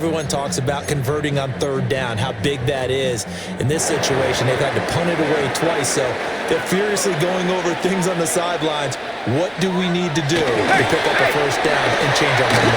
talks about converting on 3rd down, how big that is. In this situation, they've had to punt it away twice, so they're furiously going over things on the sidelines. What do we need to do to pick up a 1st down and change our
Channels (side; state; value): both; identical; correlation 1.00